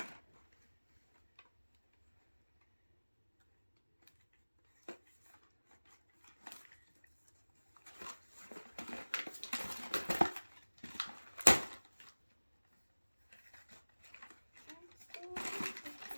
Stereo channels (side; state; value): both; inverted; correlation -1.00